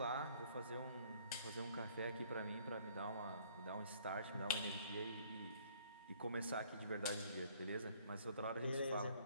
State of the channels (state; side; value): inverted; both; correlation -0.60